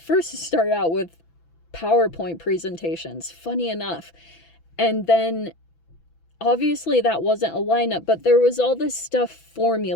start out with PowerPoint presentations, funny enough. And then obviously that wasn't a lineup, but there was all this stuff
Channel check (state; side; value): late; right; 6.0 ms